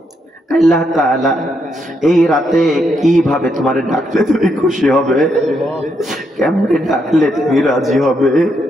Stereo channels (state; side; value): normal; both; correlation 0.78